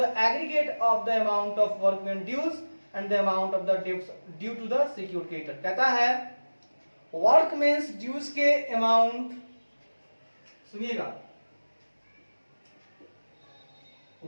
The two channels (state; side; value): inverted; both; correlation -1.00